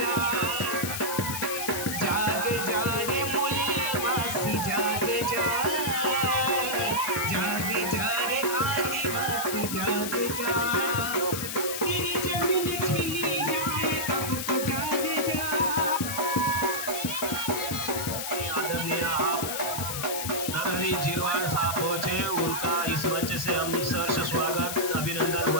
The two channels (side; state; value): left; noise; hiss, 4 dB below the sound